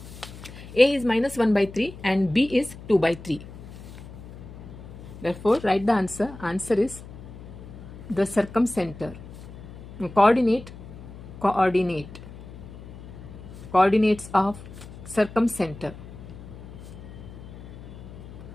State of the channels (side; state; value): left; noise; hum, 15 dB below the sound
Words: A is minus 1 by 3 and B is 2 by 3. Therefore, write the answer. Answer is the circumcenter. Coordinates of circumcenter.